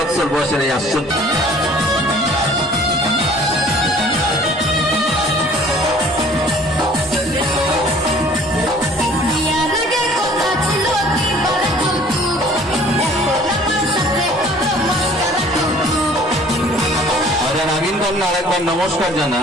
বয়সের এই আশ্চর্য। আরেকবার নমস্কার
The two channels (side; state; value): both; normal; correlation 0.52